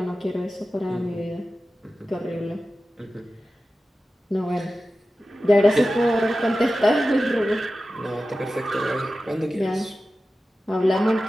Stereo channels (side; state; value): both; normal; correlation 0.94